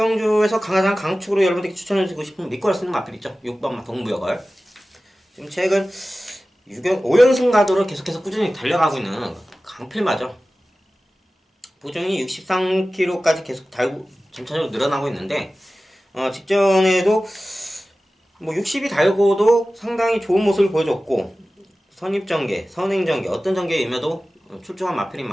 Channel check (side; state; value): both; normal; correlation 0.96